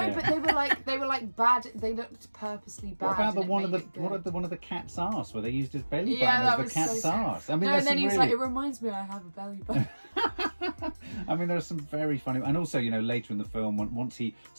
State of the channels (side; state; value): both; inverted; correlation -1.00